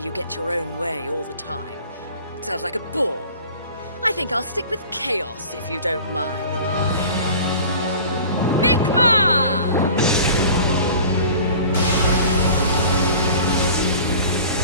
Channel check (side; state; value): both; inverted; correlation -0.42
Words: get your own way all the time? It sounds like a bore. I think I'll stick with chaos, if you don't mind. Mikma!